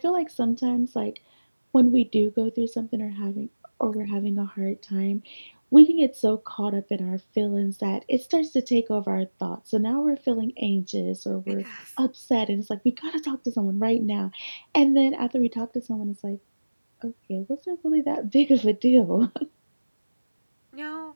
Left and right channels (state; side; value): inverted; both; correlation -1.00